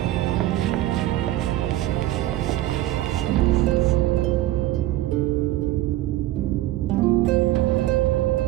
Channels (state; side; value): quieter; left; 15.3 dB